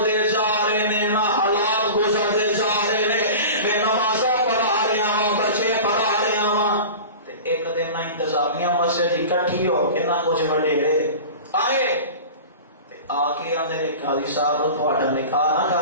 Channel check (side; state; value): both; inverted; correlation -0.35